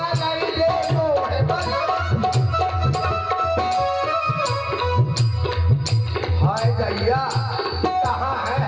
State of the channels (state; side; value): identical; both; correlation 1.00